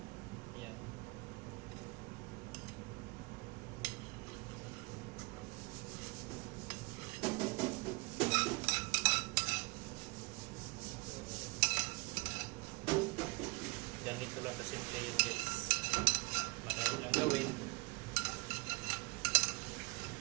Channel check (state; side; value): quieter; left; 27.3 dB